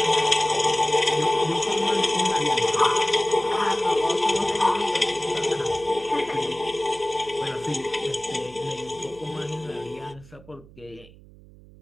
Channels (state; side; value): noise; right; hum, 22 dB below the sound